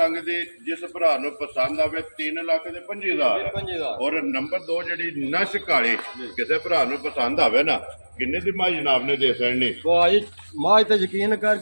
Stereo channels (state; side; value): inverted; both; correlation -1.00